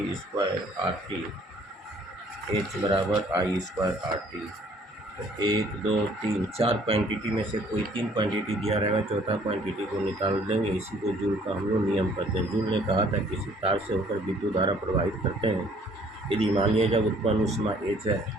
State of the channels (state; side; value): normal; both; correlation 0.59